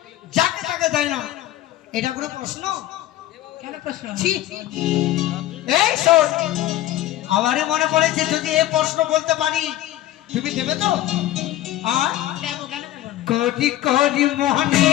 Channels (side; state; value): right; quieter; 14.3 dB